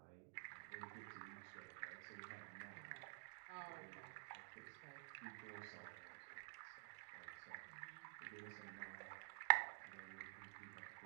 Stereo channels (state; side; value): silent; left; digital silence